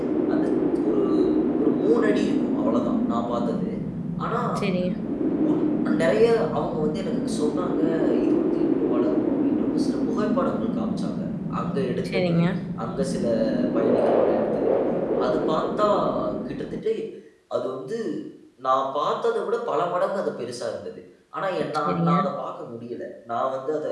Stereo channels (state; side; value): identical; both; correlation 1.00